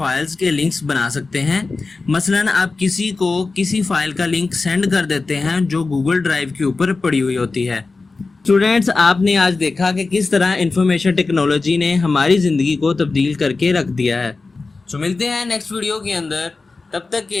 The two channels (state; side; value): quieter; right; 3.9 dB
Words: के लिंक्स बना सकते हैं। मसलन आप किसी को किसी फाइल का लिंक सेंड कर देते हैं जो गूगल ड्राइव के ऊपर पड़ी हुई होती है। स्टूडेंट्स, आपने आज देखा कि किस तरह इंफॉर्मेशन टेक्नोलॉजी ने हमारी ज़िंदगी को तब्दील करके रख दिया है। तो मिलते हैं नेक्स्ट वीडियो के अंदर। तब तक